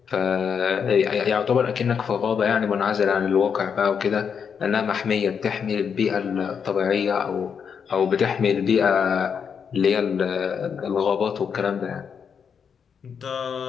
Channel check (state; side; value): quieter; right; 6.8 dB